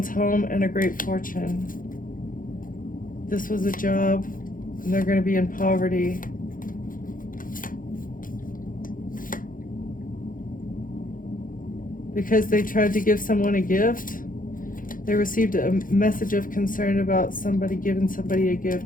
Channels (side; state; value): right; late; 0.40 ms